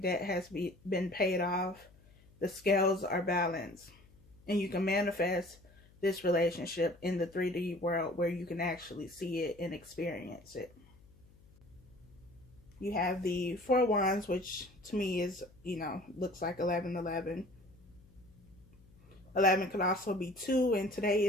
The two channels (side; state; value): left; noise; hum, 26 dB below the sound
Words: debt has been paid off, the scales are balanced, and you can manifest this relationship in the 3D world where you can actually see it and experience it. You have the Four of Wands, which to me is, looks like 1111. 11 could also be 2, and today